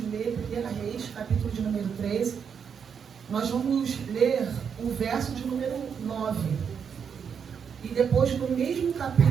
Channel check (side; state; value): left; quieter; 7.0 dB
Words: ler 1 Reis, capítulo de número 13. Nós vamos ler o verso de número 9. E depois, no mesmo